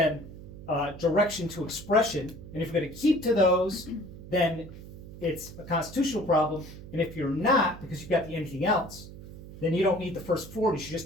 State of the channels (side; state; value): right; noise; hum, 15 dB below the sound